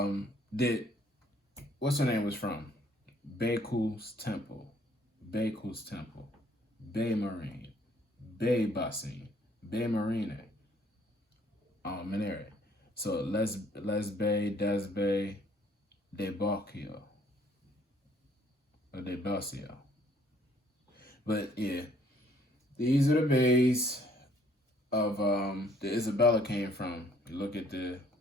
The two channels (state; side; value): normal; both; correlation 0.62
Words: what's her name was from? Baku's Temple, Bay Marine, Bay Bassin, Bay Marine, Minere. So Les Bay, Des Bay, De Bocchio, or De Bocchio. But yeah, these are the bays of the Isabella came from. You look at the